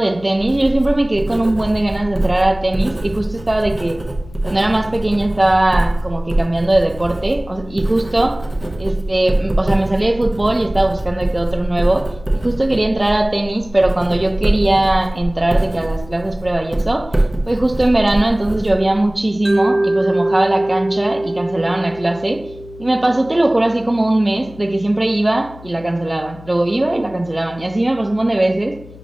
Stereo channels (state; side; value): noise; left; hum, 19 dB below the sound